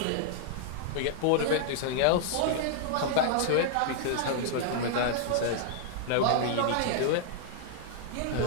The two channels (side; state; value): both; different; correlation -0.01